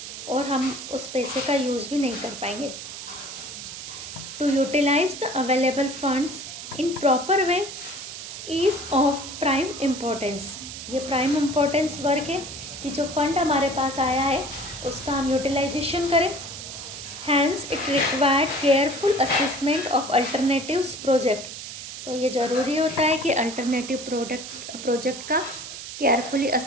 और हम उस पैसे का यूज़ भी नहीं कर पाएंगे। To utilize the available funds in proper way is of prime importance. ये प्राइम इम्पोर्टेंस वर्क है कि जो फंड हमारे पास आया है उसका हम यूटिलाइजेशन करें। Hence it required careful assessment of alternatives project. तो ये ज़रूरी होता है कि अल्टरनेटिव प्रोजेक्ट का केयरफुली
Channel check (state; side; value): noise; right; hiss, 10 dB below the sound